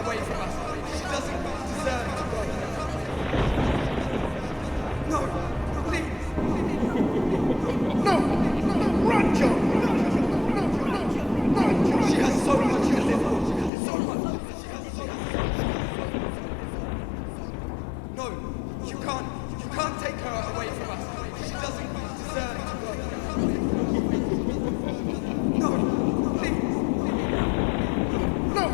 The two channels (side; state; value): right; drops out; at 13.7 s